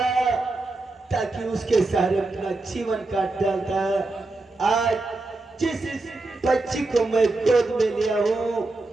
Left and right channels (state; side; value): quieter; left; 3.1 dB